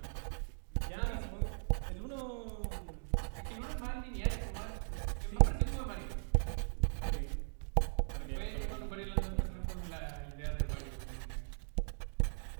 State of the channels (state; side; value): silent; left; digital silence